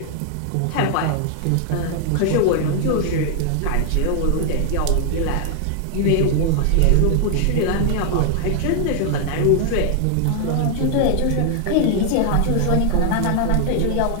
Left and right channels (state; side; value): different; both; correlation 0.00